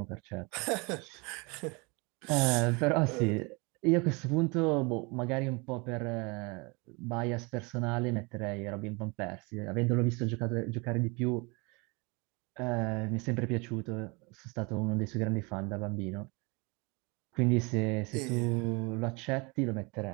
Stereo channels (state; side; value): quieter; left; 28.9 dB